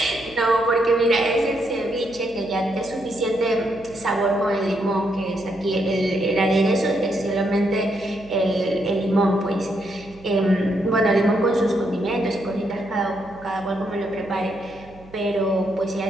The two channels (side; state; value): right; noise; hum, 22 dB below the sound